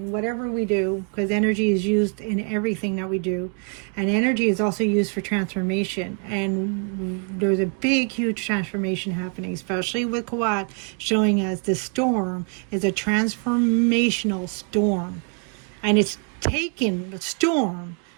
whatever we do, because energy is used in everything that we do. And energy is also used for transformation. And there's a big, huge transformation happening, especially with Kawat showing us the storm is a transformational storm. And it's taken the storm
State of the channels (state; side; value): quieter; left; 38.9 dB